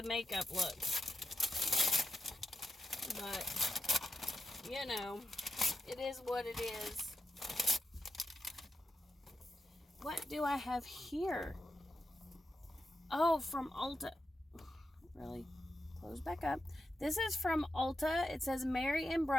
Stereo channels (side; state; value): both; normal; correlation 0.87